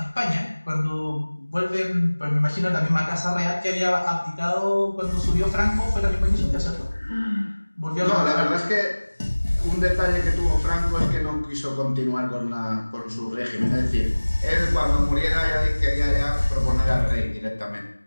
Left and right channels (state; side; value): inverted; both; correlation -1.00